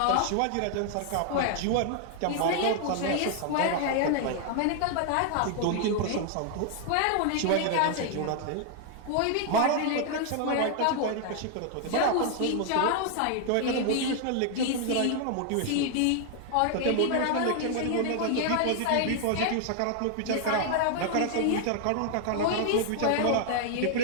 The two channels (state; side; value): different; both; correlation 0.00